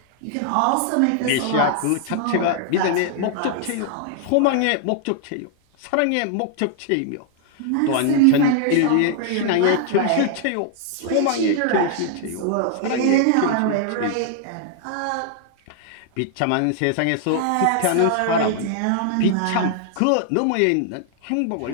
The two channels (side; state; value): both; different; correlation 0.00